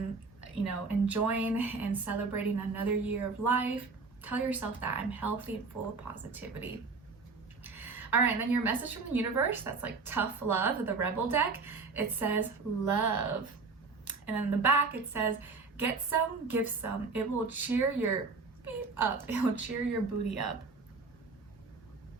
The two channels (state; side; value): quieter; left; 4.3 dB